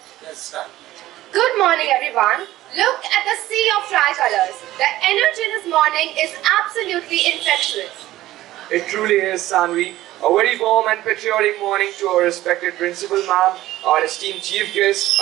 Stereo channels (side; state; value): left; quieter; 15.4 dB